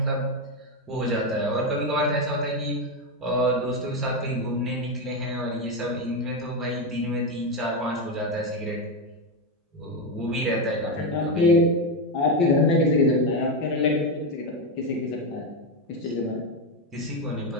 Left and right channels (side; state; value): both; normal; correlation 0.09